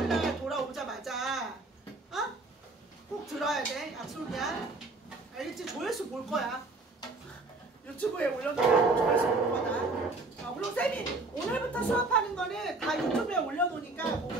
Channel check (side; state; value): left; quieter; 3.3 dB